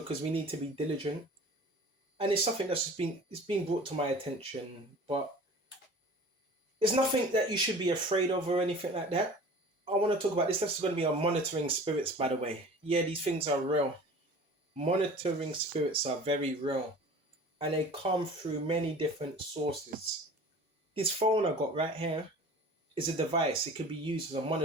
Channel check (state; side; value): normal; both; correlation 0.42